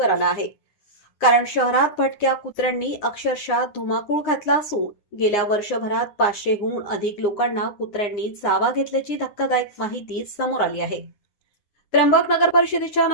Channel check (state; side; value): late; right; 9.7 ms